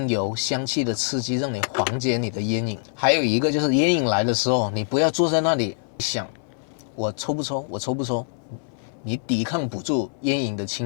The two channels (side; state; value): right; silent; 62 dB below the other